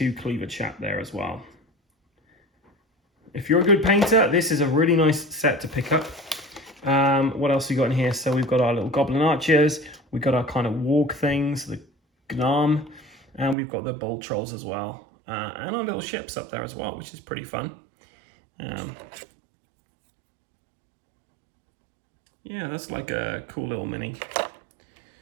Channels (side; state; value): left; drops out; at 13.6 s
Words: cleaver chap there as well. If you're a good painter, this is a really nice set to pick up. What else we got in here? So we've got our little goblin archers, we've got our kind of warg things, the gnarm, and we've got the bold trolls as well. And our little ships up there as well, which is pretty fun. Yeah, that's like a cool little mini.